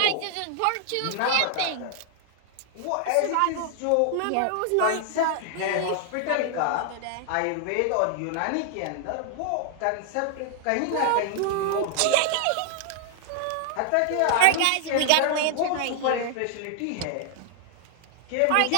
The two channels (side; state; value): both; different; correlation 0.00